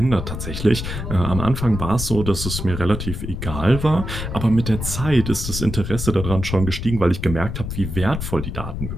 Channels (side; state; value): left; noise; rumble, 6 dB below the sound